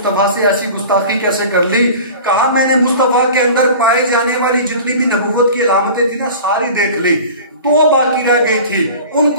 से ऐसी गुस्ताखी कैसे कर ली? कहा मैंने मुस्तफा के अंदर पाए जाने वाली जितनी भी नबुव्वत की अलामतें थी ना सारी देख ली, 2 बाकी रह गई थी,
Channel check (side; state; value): both; inverted; correlation -0.39